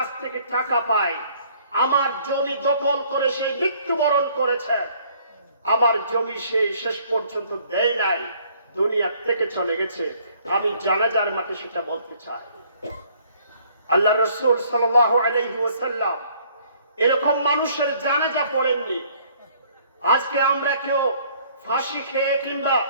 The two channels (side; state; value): both; inverted; correlation -0.61